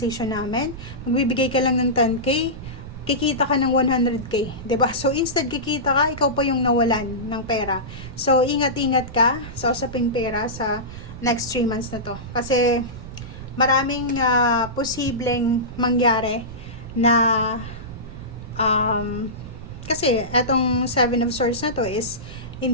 namin, magbibigay ka lang ng 10K, kikita ka ng 100K, 'di ba? So instead kikita ka, ikaw pa yung nawalan ng pera. So ingat-ingat ka sa usaping pera sa next 3 months na to. Kasi maraming posibleng mangyari na kasi etong 7 of Swords na to is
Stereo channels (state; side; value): noise; right; rumble, 13 dB below the sound